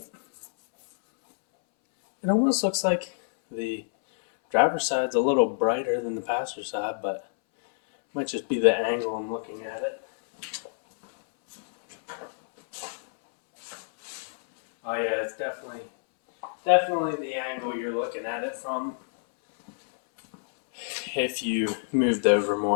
It almost looks like the driver's side's a little brighter than the passenger side, but it might just be the angle I'm looking at it. Oh yeah, it's definitely the angle you're looking at it from. If you moved over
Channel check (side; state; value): right; silent; 60 dB below the other